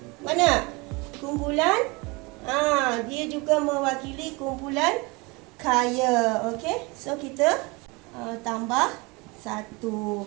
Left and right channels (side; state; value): left; quieter; 26.4 dB